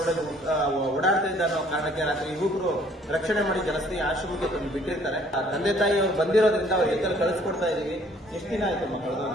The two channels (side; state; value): both; normal; correlation 0.59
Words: ಓಡಾಡ್ತಾ ಇದ್ದ ಅನ್ನೋ ಕಾರಣಕ್ಕೆ ರಾತ್ರಿ ಯುವಕರು ರಕ್ಷಣೆ ಮಾಡಿ ಜನಸ್ನೇಹಿ ಆಶ್ರಮಕ್ಕೆ ತಂದು ಬಿಟ್ಟಿರ್ತಾರೆ. ಆ ತಂದೆ ತಾಯಿ ಅವ್ರು ಬಂದಿರೋದ್ರಿಂದ ಅವ್ರ ಎತ್ತಲ್ಲಿ ಕಳಿಸ್ಕೊಡ್ತಾ ಇದೀವಿ. ಎಷ್ಟು ದಿನ ಆಯ್ತು